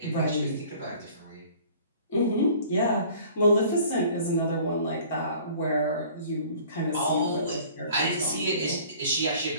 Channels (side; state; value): both; inverted; correlation -0.50